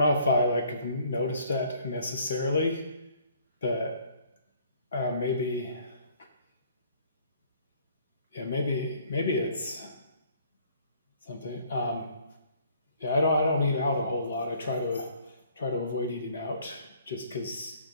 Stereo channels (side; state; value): both; inverted; correlation -0.59